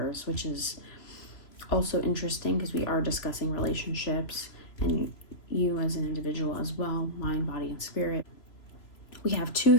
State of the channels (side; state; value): right; late; 3.0 ms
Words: which is also interesting because we are discussing relationships and you as an individual as well, mind, body, and spirit. We have 2